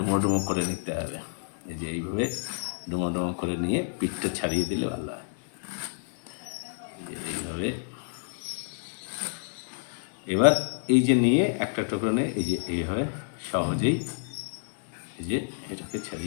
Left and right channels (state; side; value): silent; right; 59 dB below the other